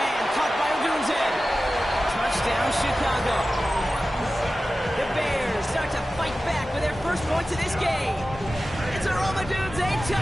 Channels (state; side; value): normal; both; correlation 0.95